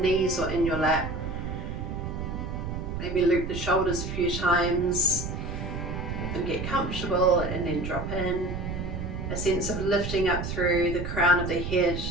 or in your lap. Maybe loop the shoulders a few times. Let them get comfortable and then drop in. A sense of lifting up through the crown of the head.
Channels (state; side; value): noise; right; rumble, 5 dB below the sound